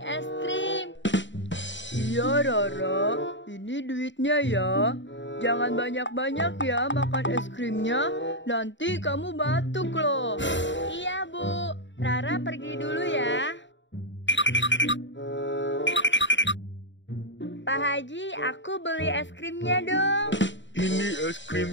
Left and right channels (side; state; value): right; late; 0.54 ms